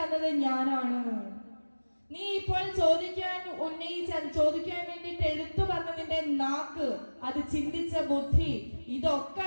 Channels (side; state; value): both; inverted; correlation -1.00